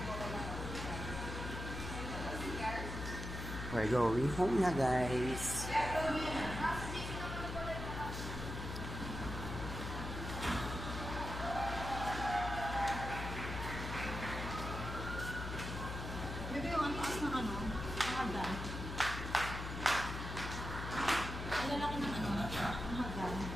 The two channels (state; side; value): noise; left; hum, 5 dB below the sound